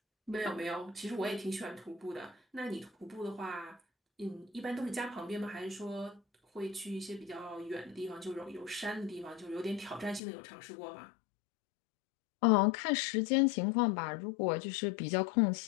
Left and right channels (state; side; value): drops out; right; at 10.2 s